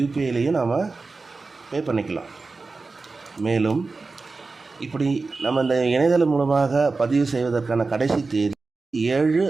நாம் பே பண்ணிக்கலாம். மேலும் இப்படி நம்ம இந்த இணையதளம் மூலமாக பதிவு செய்வதற்கான கடைசி தேதி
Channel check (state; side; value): quieter; left; 3.9 dB